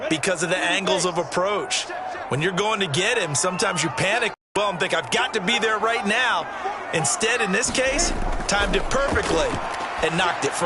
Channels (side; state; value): both; identical; correlation 1.00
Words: because of the angles of approach. When you're going to get him, sometimes you panic well and think, I've got to be there right now. Instead, in this case, timed it perfectly and knocked it